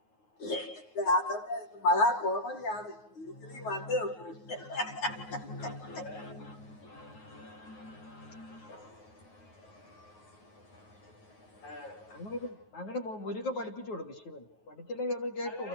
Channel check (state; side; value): late; right; 9.4 ms